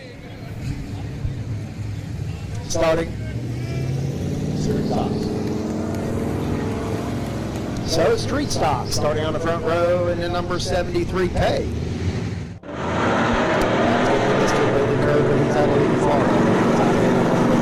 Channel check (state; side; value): identical; both; correlation 1.00